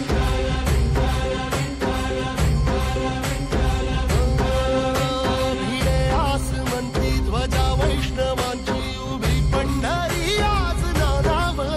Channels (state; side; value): identical; both; correlation 1.00